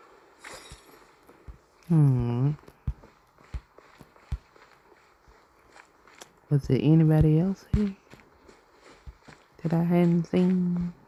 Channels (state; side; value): identical; both; correlation 1.00